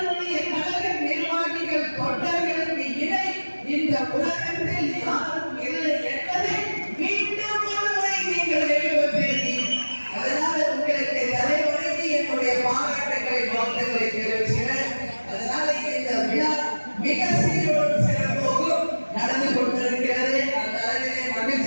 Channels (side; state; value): both; inverted; correlation -1.00